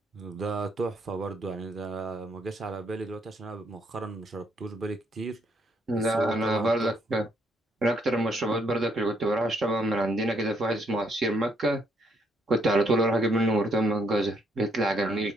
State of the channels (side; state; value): both; normal; correlation 0.71